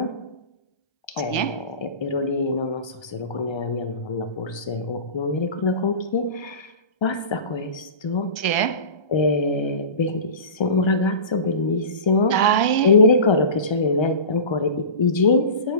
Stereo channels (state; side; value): late; right; 1.3 ms